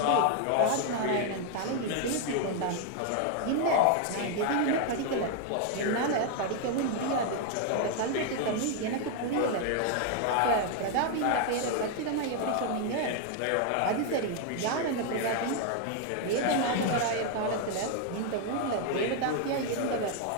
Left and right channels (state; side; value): different; both; correlation 0.00